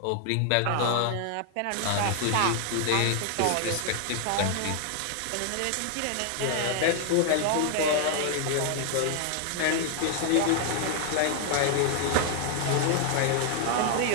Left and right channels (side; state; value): both; different; correlation 0.00